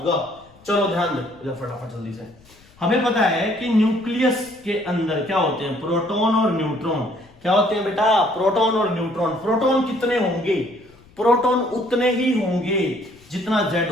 चलो ध्यान दो फटाफट जल्दी से। हमें पता है कि न्यूक्लियस के अंदर क्या होते हैं? प्रोटॉन और न्यूट्रॉन। क्या होते हैं बेटा? प्रोटॉन और न्यूट्रॉन। प्रोटॉन कितने होंगे? प्रोटॉन उतने ही होंगे जितना Z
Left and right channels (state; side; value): noise; left; rumble, 28 dB below the sound